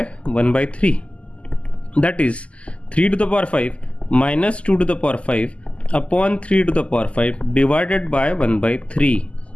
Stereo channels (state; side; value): late; right; 0.058 ms